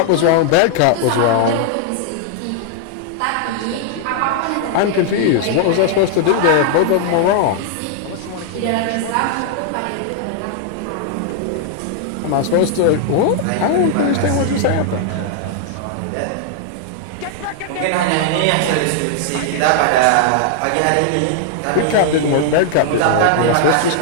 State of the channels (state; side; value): different; both; correlation 0.00